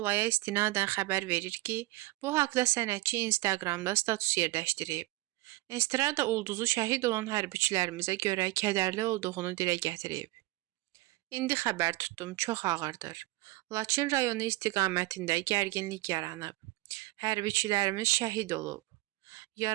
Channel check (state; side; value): quieter; left; 20.2 dB